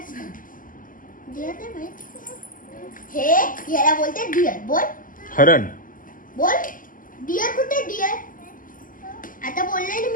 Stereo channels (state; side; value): late; right; 0.39 ms